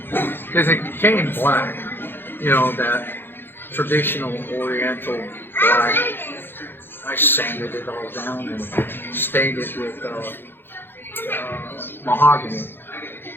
because it came black. You know, that traditional Oriental black. I sanded it all down and stained it with mahogany.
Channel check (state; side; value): late; right; 0.10 ms